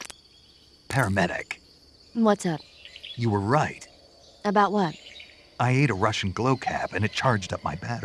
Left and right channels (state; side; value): identical; both; correlation 1.00